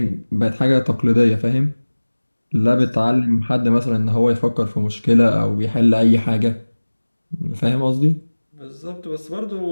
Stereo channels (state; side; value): inverted; both; correlation -1.00